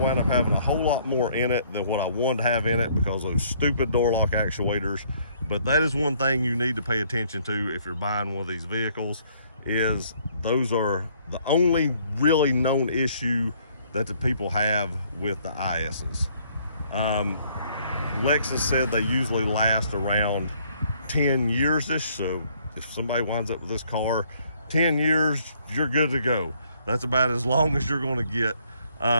up having a whole lot more in it than what I wanted to have in it because of those stupid door lock actuators. But that is one thing you need to pay attention to if you're buying one of these vehicles, is those are the only really known issue that the people have with the ISs. Lexus said they usually last around 10 years-ish, so if somebody winds up with this car 10 years, you're good to go. That's about as long as you're going to get.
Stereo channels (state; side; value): inverted; both; correlation -0.64